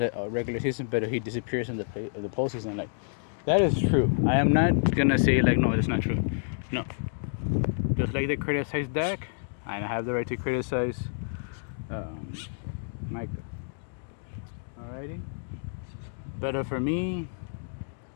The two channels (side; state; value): right; silent; digital silence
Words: regular season, but he disappears in the postseason. Like, that is true. I am not gonna say like, no, that's not true. No, just like they criticize Dak, I have the right to criticize um, Micah. Alrighty, but for me,